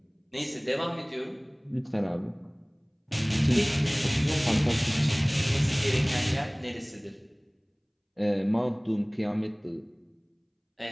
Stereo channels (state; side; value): identical; both; correlation 1.00